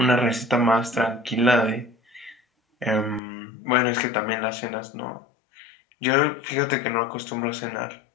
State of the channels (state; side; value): drops out; right; at 3.2 s